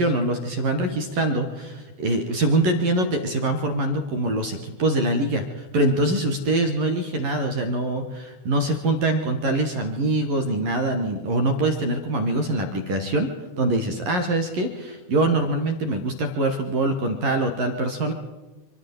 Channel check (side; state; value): left; late; 11 ms